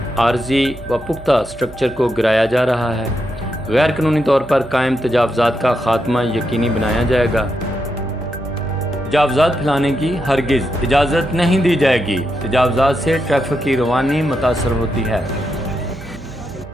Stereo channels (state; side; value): noise; right; hum, 19 dB below the sound